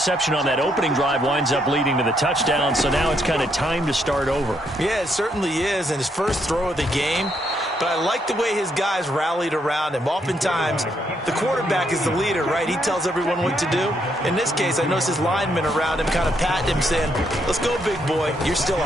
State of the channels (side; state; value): both; normal; correlation 0.75